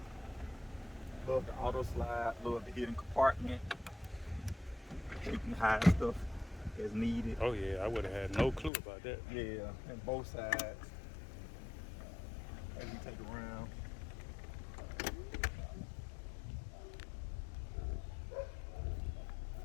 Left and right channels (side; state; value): right; drops out; at 8.7 s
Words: love the auto slide, love the hidden compartment. You can hide stuff as needed. Oh yeah, I would have had no clue about that. Yeah, and both sides. As we take around.